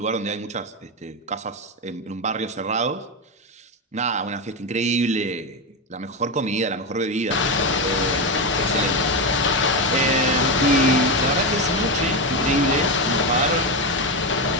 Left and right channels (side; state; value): both; normal; correlation 0.12